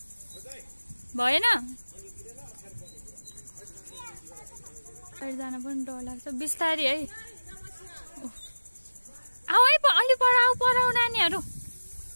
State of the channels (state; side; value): inverted; both; correlation -1.00